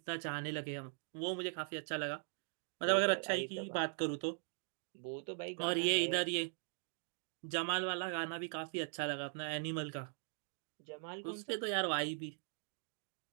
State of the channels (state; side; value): silent; left; digital silence